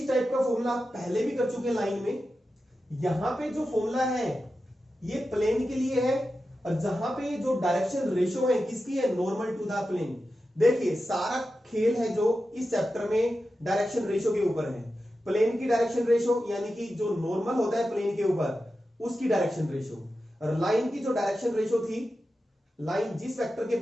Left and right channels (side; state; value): both; normal; correlation 0.91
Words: टाइप का फॉर्मूला आप पहले भी कर चुके हैं लाइन में। यहां पे जो फॉर्मूला है ये प्लेन के लिए है, और जहां पे जो डायरेक्शन रेशो है किसकी है, नॉर्मल टू द प्लेन। देखिए सारा खेल है जो इस चैप्टर में डायरेक्शन रेशो के ऊपर है। प्लेन की डायरेक्शन रेशो यानी कि जो नॉर्मल होता है प्लेन के ऊपर उसकी डायरेक्शन रेशो, और लाइन की जो डायरेक्शन रेशो थी, लाइन जिस वेक्टर के